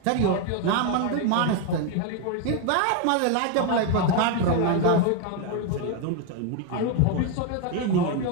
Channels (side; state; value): both; different; correlation 0.01